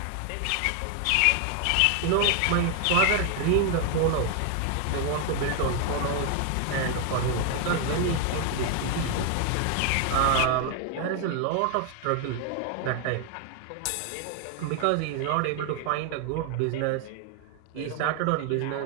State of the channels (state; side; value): different; both; correlation 0.00